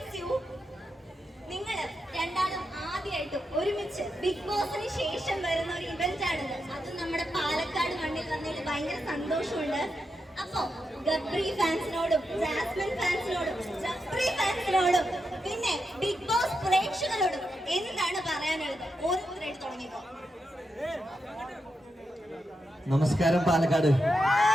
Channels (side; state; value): both; normal; correlation 0.86